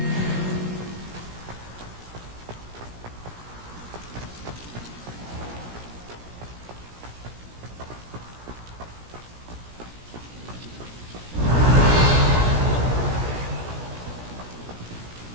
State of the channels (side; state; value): left; late; 17 ms